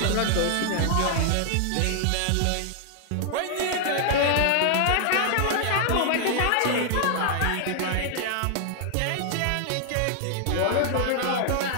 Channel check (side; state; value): both; different; correlation -0.01